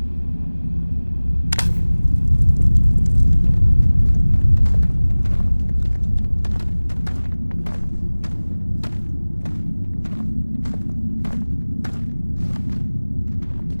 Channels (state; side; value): inverted; both; correlation -1.00